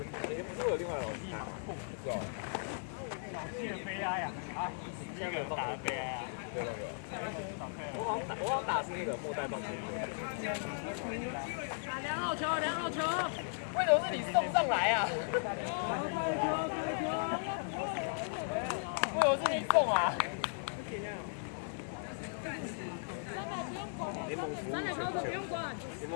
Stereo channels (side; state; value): right; silent; digital silence